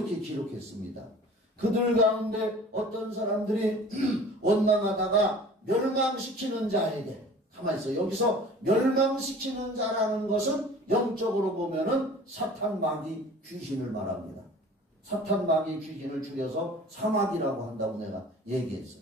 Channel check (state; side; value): normal; both; correlation 0.45